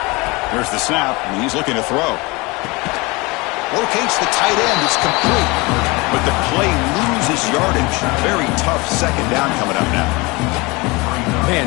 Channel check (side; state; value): right; quieter; 24.9 dB